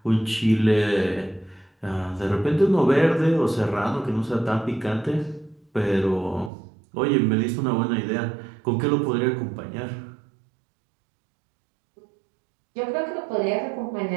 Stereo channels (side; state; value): left; drops out; at 6.5 s